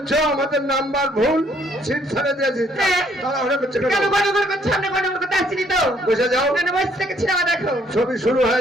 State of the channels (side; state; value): both; normal; correlation 0.65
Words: আমাদের নাম্বার ভুল, সিট ছেড়ে দিয়েছি। তাড়াহুড়ো করছে কেন? কেন গন্ডগোল করছে? আমরা গন্ডগোল করতে আসছিনি তো। বসে যাও। কেন বসে থেকে সিনেমা দেখো? ছবি শুরু